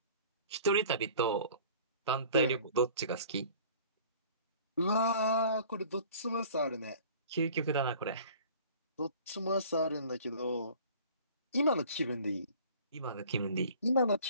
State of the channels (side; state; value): both; inverted; correlation -0.48